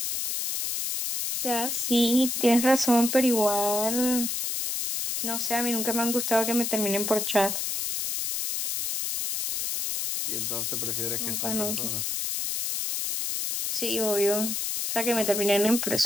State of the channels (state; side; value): noise; left; hiss, 2 dB below the sound